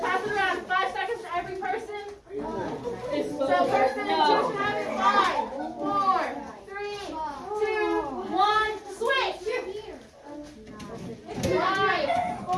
pass it around. 5 seconds to every person. So person 2 should have it. 5, 4, 3, 2, 1, switch!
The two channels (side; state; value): both; identical; correlation 1.00